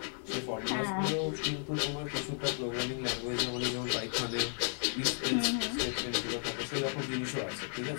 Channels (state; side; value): silent; right; 55 dB below the other